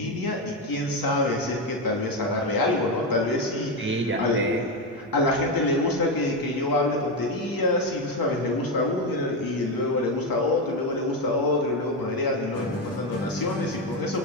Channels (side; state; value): both; normal; correlation 0.11